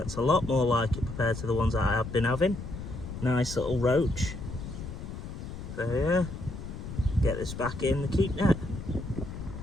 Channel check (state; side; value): noise; left; rumble, 9 dB below the sound